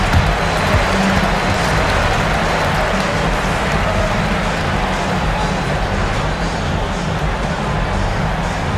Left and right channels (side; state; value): both; identical; correlation 1.00